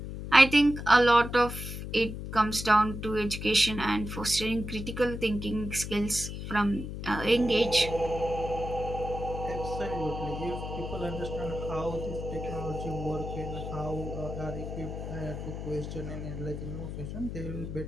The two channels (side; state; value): left; noise; hum, 7 dB below the sound